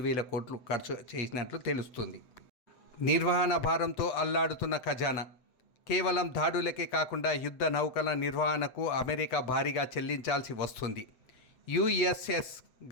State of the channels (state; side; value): late; right; 8.0 ms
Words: కోట్లు ఖర్చు చేసినట్లు తెలుస్తుంది. నిర్వహణ భారంతో అల్లాడుతున్న ఖజానా. కేవలం దాడులకే కాకుండా యుద్ధ నౌకల నిర్వహణకు అమెరికా భారీగా చెల్లించాల్సి వస్తుంది. యుఎస్ఎస్